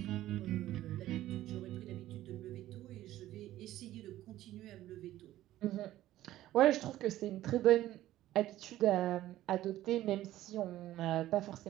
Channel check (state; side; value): quieter; left; 14.4 dB